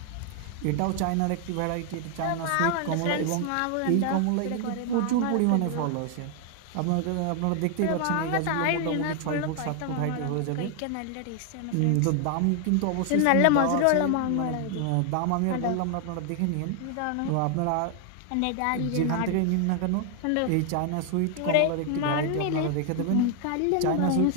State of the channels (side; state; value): both; different; correlation 0.00